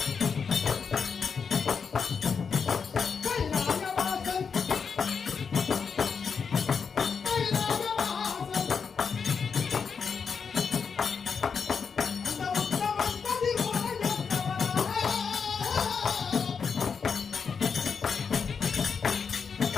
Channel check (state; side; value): quieter; right; 6.0 dB